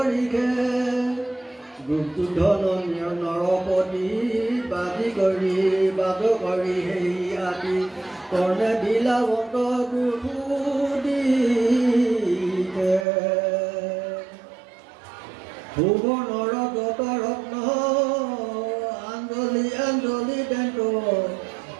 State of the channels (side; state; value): left; drops out; at 13.1 s